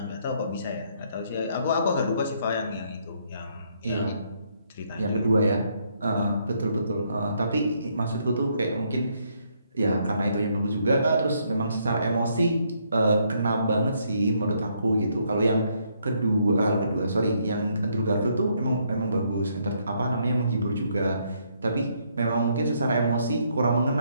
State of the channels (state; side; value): inverted; both; correlation -0.72